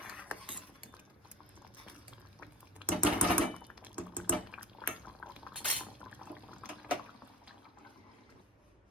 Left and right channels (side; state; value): both; normal; correlation 0.36